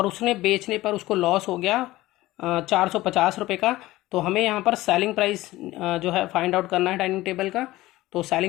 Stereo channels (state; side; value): quieter; right; 17.5 dB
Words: उसने बेचने पर उसको लॉस हो गया 450 रुपये का। तो हमें यहाँ पर सेलिंग प्राइस जो है फाइंड आउट करना है डाइनिंग टेबल का। तो